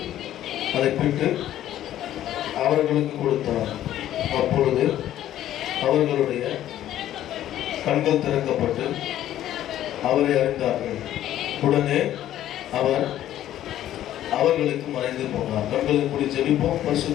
அதை பிட்டு அவர்களுக்கு கொடுத்தார். அப்பொழுது அவர்களுடைய கண்கள் திறக்கப்பட்டு அவரை அறிந்தார்கள். உடனே அவர் அவர்களுக்கு மறைந்து போனார். கண்களை மூடி ஜெபிப்போம்.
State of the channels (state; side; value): quieter; right; 12.4 dB